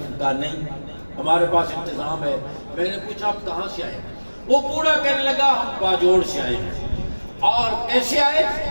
کہا نہیں، ہمارے پاس انتظام ہے۔ میں نے پوچھا آپ کہاں سے آئے؟ وہ بوڑھا کہنے لگا ہم باجوڑ سے آئے ہیں۔ اور کیسے آئے؟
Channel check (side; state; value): both; inverted; correlation -1.00